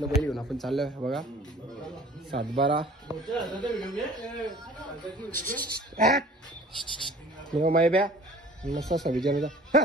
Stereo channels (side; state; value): both; normal; correlation 0.47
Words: बैल घेऊन आपण चाललोय. बघा 7-12 मायब्या मस्त 26 जानेवारीचा.